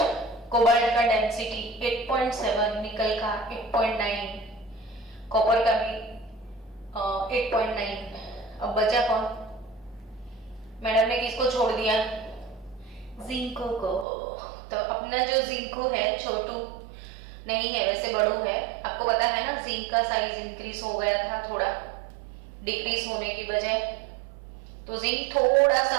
कोबाल्ट का डेंसिटी 8.7, निकल का 8.9, कॉपर का भी 8.9। अब बचा कौन? मैडम ने किसको छोड़ दिया? जिंको को। तो अपना जो जिंको है छोटू, नहीं है, वैसे बड़ू है। आपको पता है ना, जिंक का साइज इंक्रीज हो गया था थोड़ा, डिक्रीज होने की बजाय। तो जिंक थोड़ा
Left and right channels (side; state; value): left; drops out; at 14.1 s